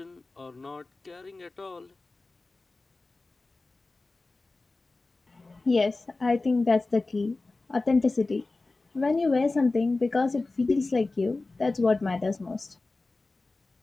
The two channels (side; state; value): right; quieter; 3.4 dB